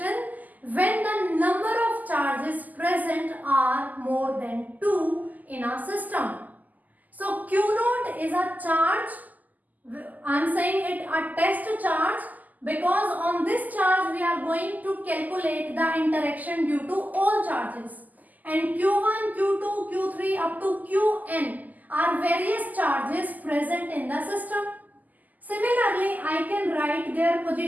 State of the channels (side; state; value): left; late; 0.081 ms